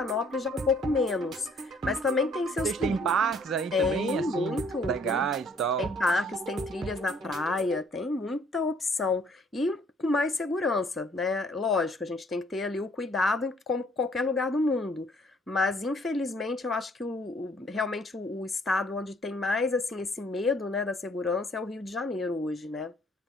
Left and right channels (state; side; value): normal; both; correlation 0.61